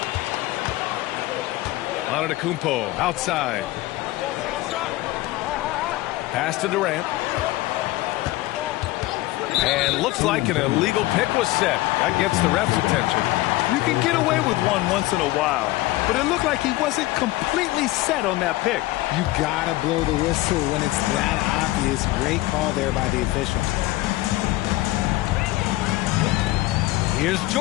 Antetokounmpo outside. Pass to Durant. And looks like an illegal pick was set. That gets the ref's attention. You can get away with one once in a while, but it looked like he wasn't completely set on that pick. You gotta blow the whistle when it's that obvious. Great call there by the official. Here's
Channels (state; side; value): quieter; right; 18.2 dB